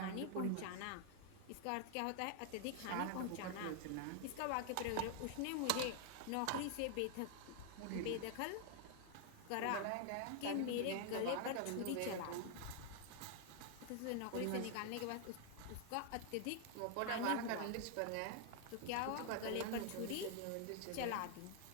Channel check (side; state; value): both; different; correlation 0.00